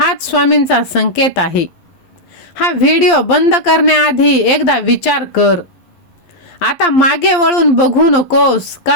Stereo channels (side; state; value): right; late; 11 ms